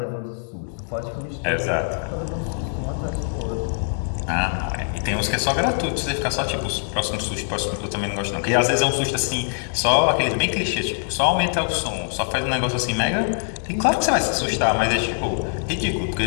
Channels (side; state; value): right; silent; digital silence